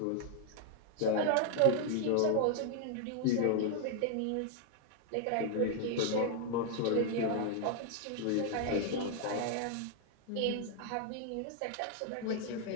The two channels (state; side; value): different; both; correlation 0.00